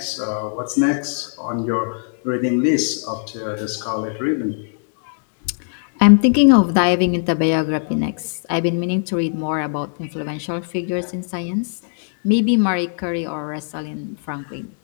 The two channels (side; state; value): right; silent; digital silence